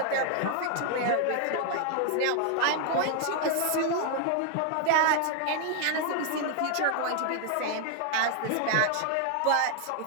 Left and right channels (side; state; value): both; different; correlation 0.00